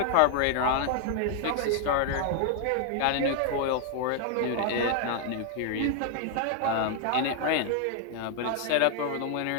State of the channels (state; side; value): different; both; correlation 0.00